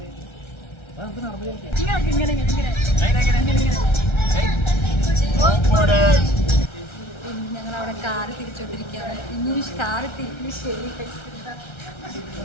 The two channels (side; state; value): right; late; 1.3 ms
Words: ഞങ്ങളവിടെ കാറ് തിരിച്ചോണ്ടിരിക്കുകയാണ്. ഇനി കാറ് തിരിഞ്ഞ് ശരി